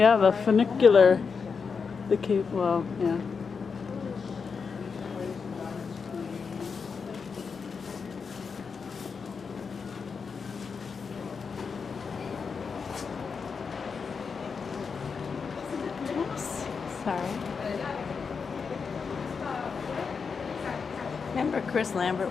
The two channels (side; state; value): right; quieter; 5.5 dB